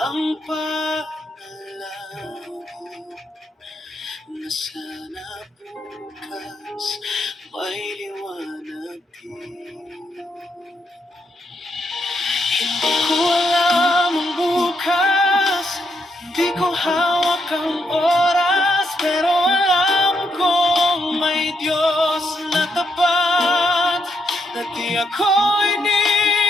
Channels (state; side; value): normal; both; correlation 0.78